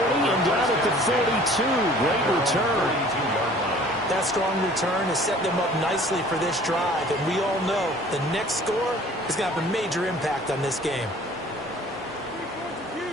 down at the 42. Great return. That strong return has set them up nicely for this drive, and we all know the next score is going to have a major impact on this game.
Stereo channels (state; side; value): normal; both; correlation 0.50